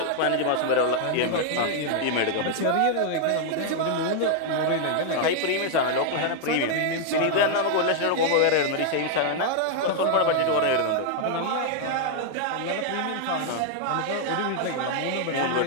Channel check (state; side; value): different; both; correlation 0.00